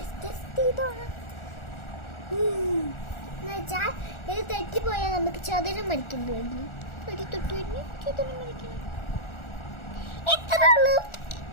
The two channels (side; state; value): right; late; 1.4 ms